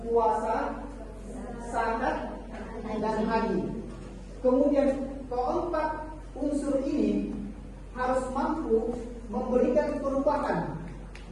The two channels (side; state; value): both; identical; correlation 1.00